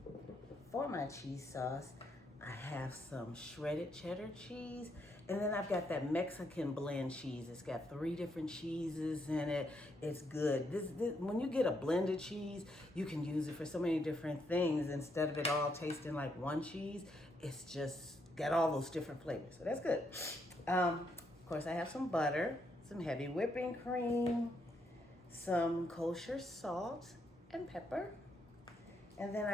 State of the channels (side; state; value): both; normal; correlation 0.77